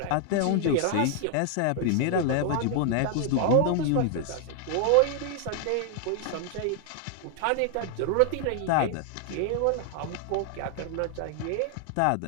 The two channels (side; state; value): both; different; correlation 0.00